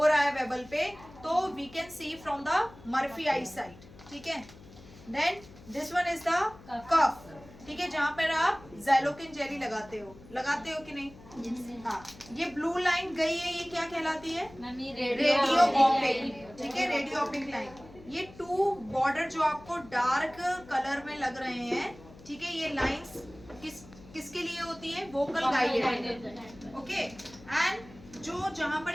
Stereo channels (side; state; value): left; noise; hum, 20 dB below the sound